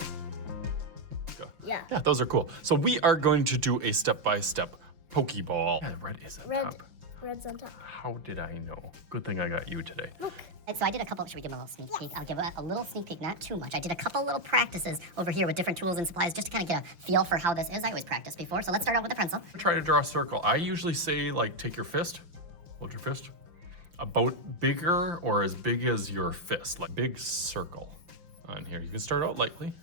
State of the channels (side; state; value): left; late; 5.8 ms